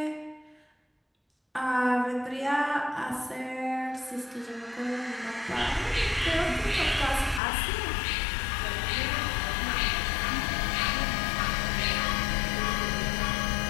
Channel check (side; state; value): right; drops out; at 7.4 s